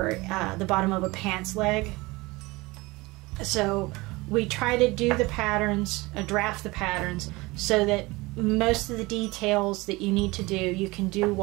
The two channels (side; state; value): left; quieter; 22.5 dB